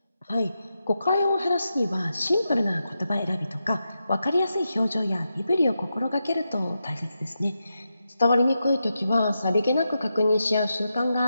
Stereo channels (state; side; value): inverted; both; correlation -0.87